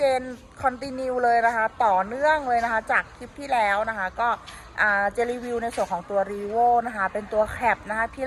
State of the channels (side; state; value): both; identical; correlation 1.00